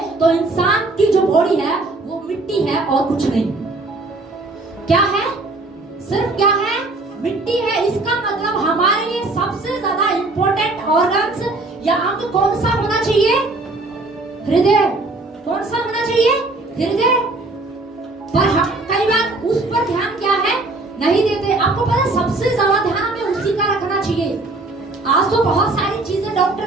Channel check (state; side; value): quieter; left; 3.1 dB